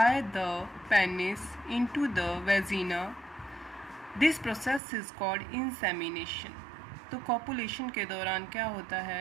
the penis into the vagina. This process is called insemination. तो कॉपुलेशन के दौरान क्या होता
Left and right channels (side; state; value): left; drops out; at 4.8 s